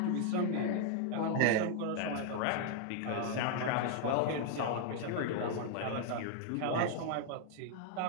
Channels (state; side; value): different; both; correlation 0.00